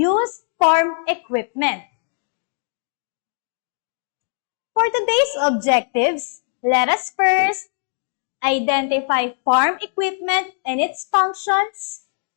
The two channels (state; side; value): silent; right; digital silence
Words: farm equipment. For today's objectives, let us first identify farm equipment and its functions.